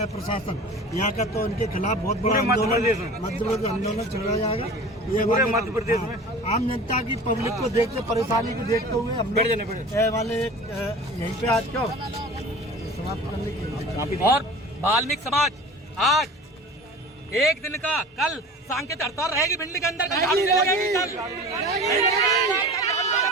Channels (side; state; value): both; normal; correlation 0.39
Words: प्रशासन यहाँ का, तो उनके खिलाफ बहुत बड़ा आंदोलन चलाया जाएगा। ये पूरे मध्य प्रदेश में आम जनता की पब्लिक को देखते परेशानी को देखते हुए हम वाले यहीं पे आज क्यों समाप्त करने की। और वाल्मीकि समाज आज एक दिन का कल सांकेतिक हड़ताल रहेगी भिंडी के अंदर।